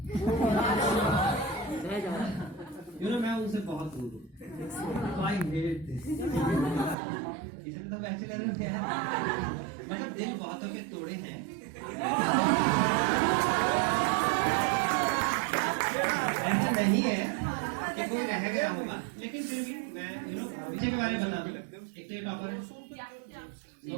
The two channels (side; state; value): left; drops out; at 7.0 s